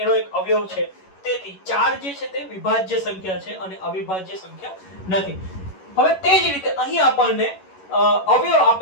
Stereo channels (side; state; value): right; late; 11 ms